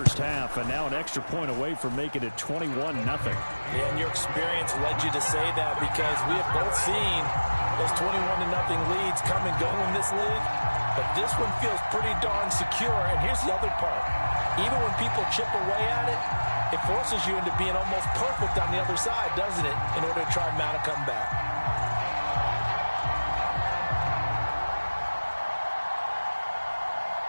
half, and now an extra point away from making it 21-0. Yeah, and your experience led you to say that because we have both seen those 21-0 leads come and go in this league, but this one feels pretty darn secure, and here's the other part. Even when people chip away at it, it forces you into being almost perfect on the other side, doesn't it, in order to try and mount a comeback.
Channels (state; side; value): inverted; both; correlation -1.00